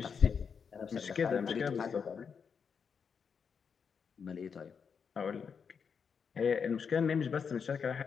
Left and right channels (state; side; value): quieter; right; 6.3 dB